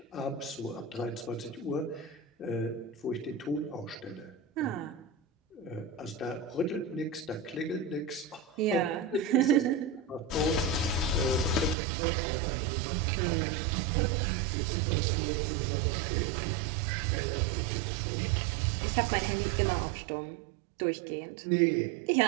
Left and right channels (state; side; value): drops out; left; at 11.8 s